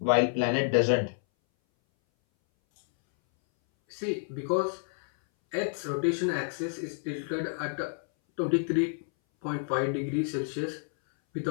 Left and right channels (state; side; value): silent; right; 58 dB below the other